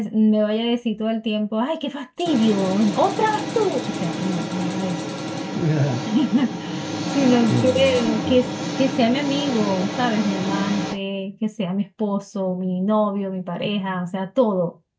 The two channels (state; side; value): identical; both; correlation 1.00